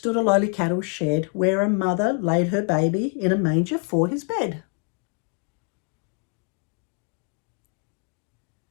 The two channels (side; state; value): right; quieter; 37.1 dB